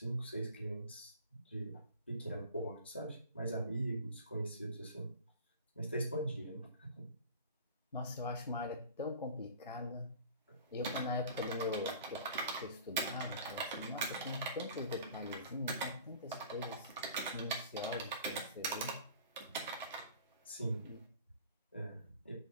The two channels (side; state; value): both; inverted; correlation -0.43